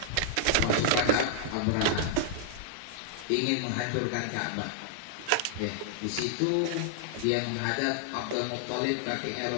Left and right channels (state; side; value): different; both; correlation -0.01